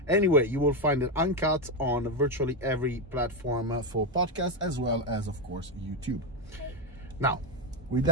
Anyway, you will find it uncut on virtually every platform for podcasts, as well as, of course, YouTube. Okay. Now, with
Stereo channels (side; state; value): both; normal; correlation 0.07